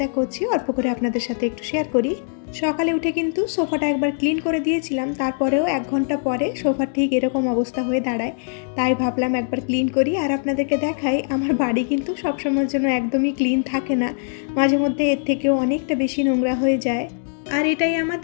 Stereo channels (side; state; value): right; silent; digital silence